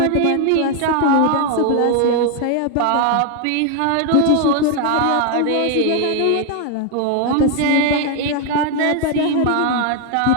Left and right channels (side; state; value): both; different; correlation 0.00